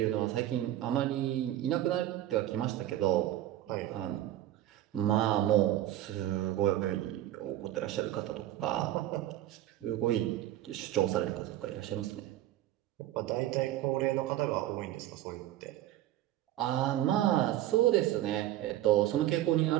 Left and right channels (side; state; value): left; quieter; 13.8 dB